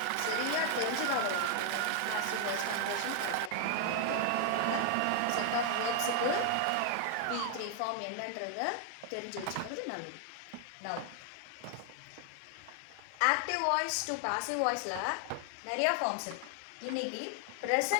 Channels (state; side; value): different; both; correlation 0.00